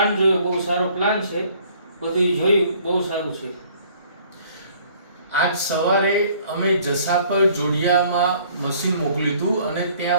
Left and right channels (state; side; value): inverted; both; correlation -0.57